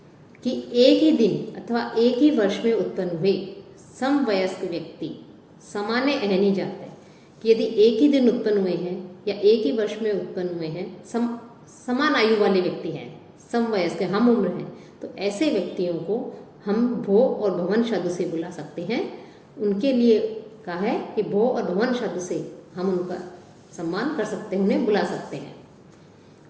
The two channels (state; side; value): identical; both; correlation 1.00